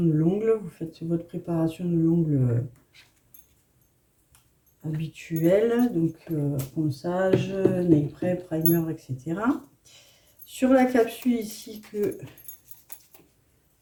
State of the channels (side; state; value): both; identical; correlation 1.00